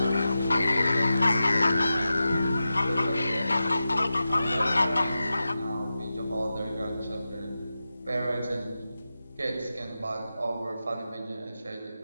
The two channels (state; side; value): inverted; both; correlation -0.92